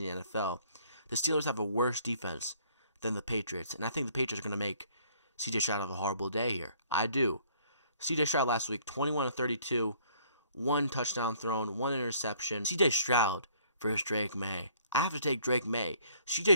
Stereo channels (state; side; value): inverted; both; correlation -0.60